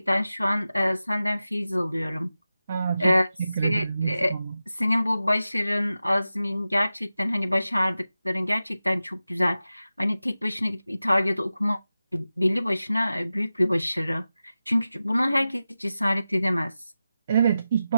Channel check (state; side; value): inverted; both; correlation -0.93